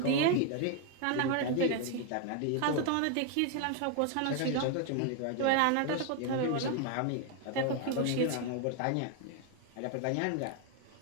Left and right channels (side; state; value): both; different; correlation 0.01